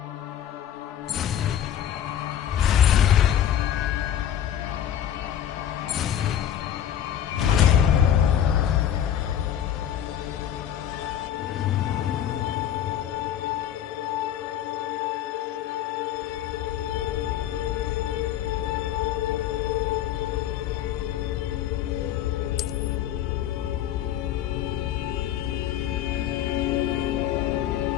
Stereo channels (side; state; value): right; quieter; 10.4 dB